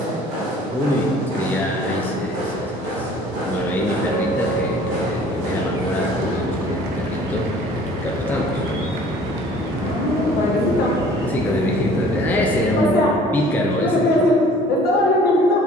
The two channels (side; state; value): both; normal; correlation 0.51